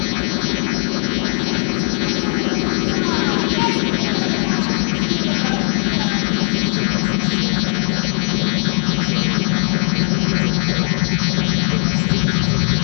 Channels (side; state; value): right; silent; digital silence